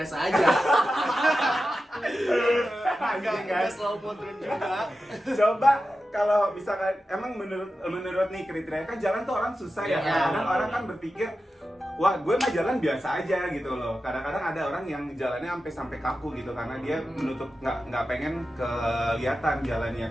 aja. Anjing kan? Nggak slow mo turun juga. Coba kalau misalkan emang menurut nih kriteria kan jalan tuh orang susah ya. Iya, Kadang-kadang benar. orang kan berpikir, wah gue mah jalan biasa aja gitu loh. Kadang-kadang ada orang yang jalannya sampai kaku gitu karena dia menutup nggak pengen kelihatan jalannya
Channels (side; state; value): both; normal; correlation 0.92